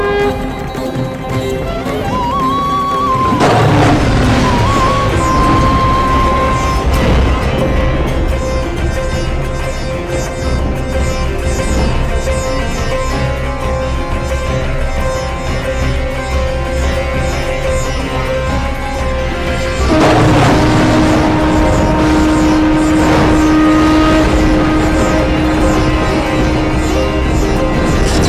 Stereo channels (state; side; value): identical; both; correlation 1.00